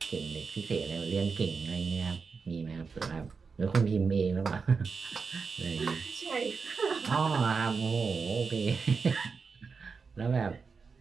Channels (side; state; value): left; quieter; 5.1 dB